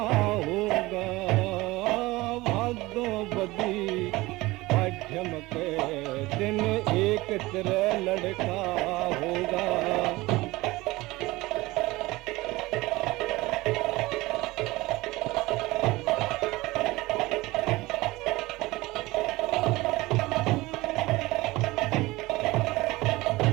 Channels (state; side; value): quieter; left; 20.3 dB